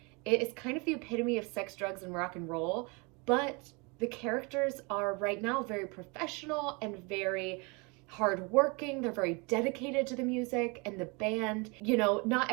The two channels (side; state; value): left; quieter; 29.7 dB